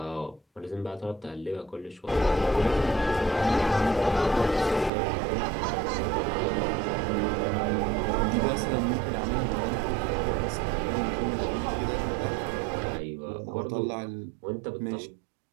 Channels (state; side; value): drops out; left; at 4.9 s